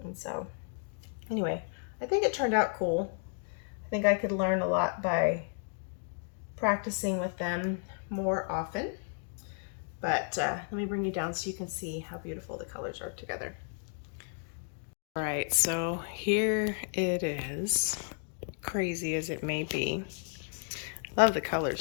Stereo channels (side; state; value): right; silent; 56 dB below the other